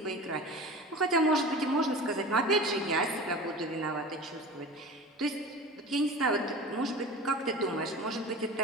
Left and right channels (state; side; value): normal; both; correlation 0.35